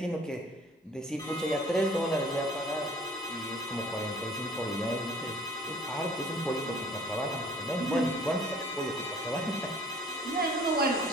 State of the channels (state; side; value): normal; both; correlation 0.52